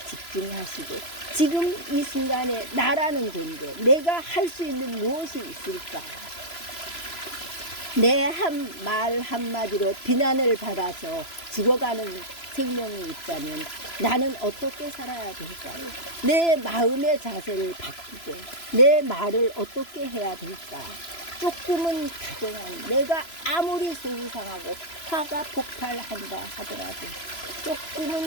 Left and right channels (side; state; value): right; late; 3.0 ms